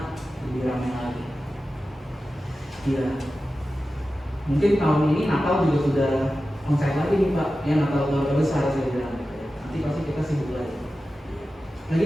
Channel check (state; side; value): normal; both; correlation 0.93